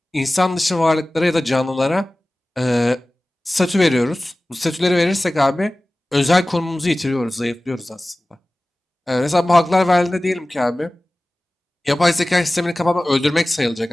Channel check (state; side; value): normal; both; correlation 0.97